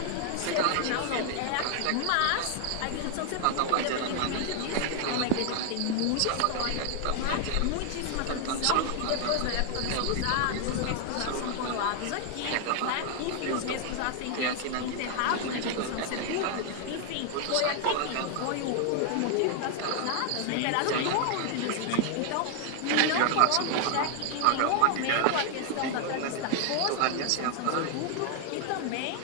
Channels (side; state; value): both; different; correlation 0.00